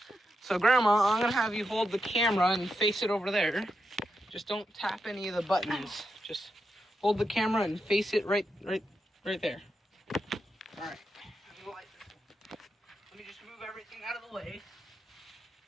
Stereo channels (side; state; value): both; normal; correlation 0.86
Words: So, Grandma, I'm gonna have you hold the camera and face it over there. Just don't tap any of the buttons. Just hold the camera and face it right there. All right. Let me just move everything out of the way.